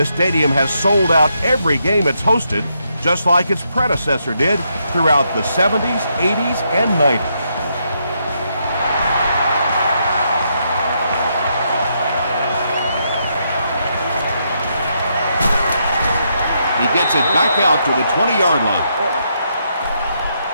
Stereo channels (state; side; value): inverted; both; correlation -0.78